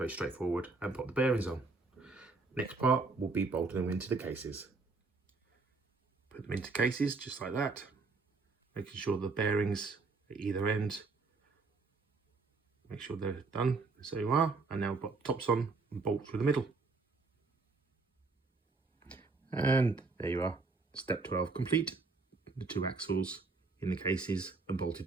straightforward, and pop the bearings on. Next part will be bolting them into the cases. Put them into cases just like that, making sure the bearings at either end, make sure they're done. So you are, and now put tops on and bolt through the middle. And there you are, step 12 complete. The 2 axles in the cases and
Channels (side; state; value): left; quieter; 4.0 dB